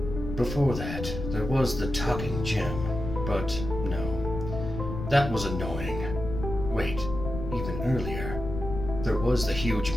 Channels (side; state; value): left; noise; rumble, 6 dB below the sound